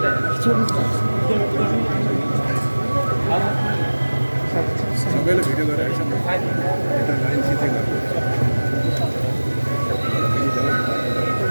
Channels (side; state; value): both; inverted; correlation -1.00